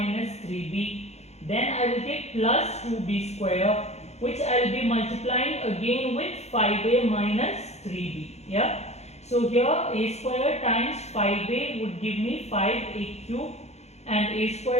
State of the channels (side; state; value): right; late; 0.32 ms